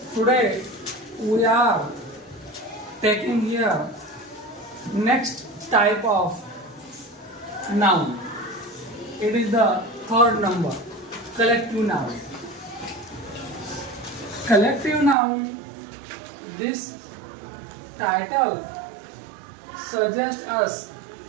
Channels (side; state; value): left; drops out; at 15.2 s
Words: today we are taking here next type of noun. It is the third number, collective noun. Collective noun, this title suggests us